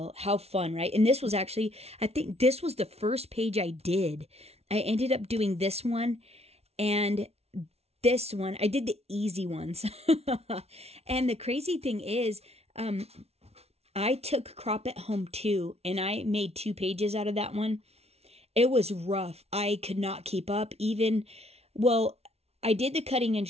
how fun, right? And this was actually, I think this was the first page I did. I ended up doing this one and this one. I did the easy ones. And the crazy thing is, I took Crop at Home 2, and I made 2 pages out of that one. It was rough. I could not keep up. Even, well, I did the cutting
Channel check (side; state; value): left; late; 0.30 ms